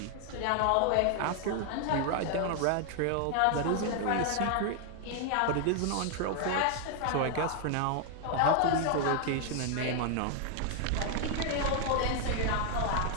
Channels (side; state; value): both; different; correlation 0.00